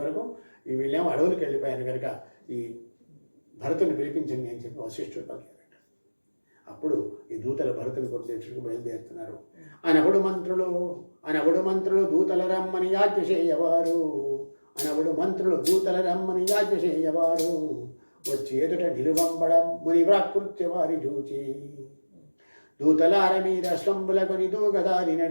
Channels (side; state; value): both; inverted; correlation -1.00